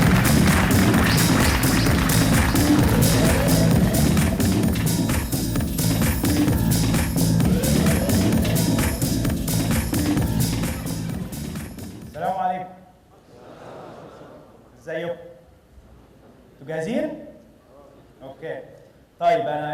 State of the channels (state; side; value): identical; both; correlation 1.00